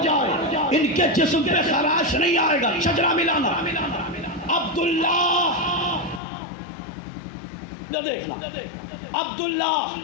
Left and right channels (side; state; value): right; drops out; at 6.2 s